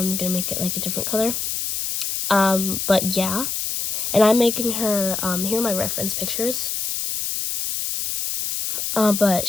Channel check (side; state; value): left; noise; hiss, 2 dB below the sound